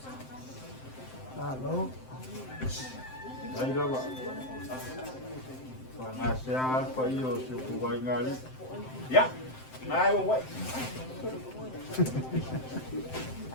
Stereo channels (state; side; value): late; right; 7.7 ms